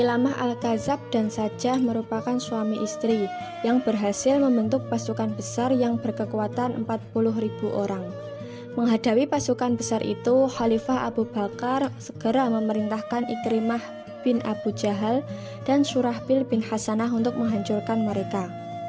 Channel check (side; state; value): both; identical; correlation 1.00